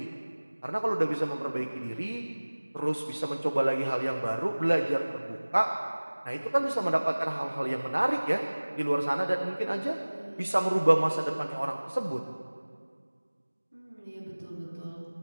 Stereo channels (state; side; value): inverted; both; correlation -1.00